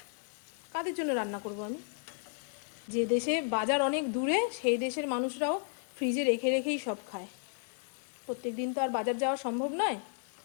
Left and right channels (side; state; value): right; silent; 56 dB below the other